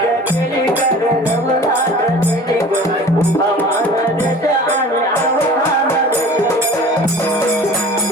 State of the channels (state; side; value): normal; both; correlation 0.42